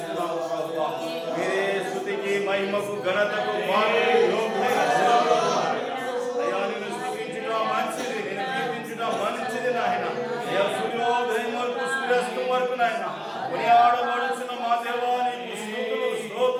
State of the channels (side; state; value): both; identical; correlation 1.00